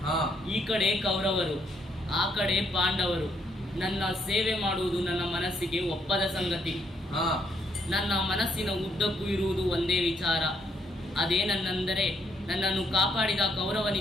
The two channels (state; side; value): normal; both; correlation 0.73